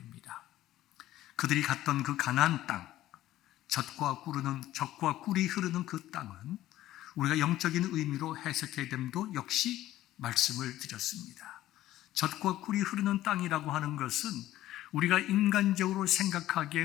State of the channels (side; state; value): right; quieter; 14.4 dB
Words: 그들이 갔던 그 가나안 땅, 젖과 꿀이 흐르는 그 땅은 우리가 영적인 의미로 해석해야 됨도 역시 말씀을 드렸습니다. 젖과 꿀이 흐르는 땅이라고 하는 것은 우리가 인간적으로 생각하기에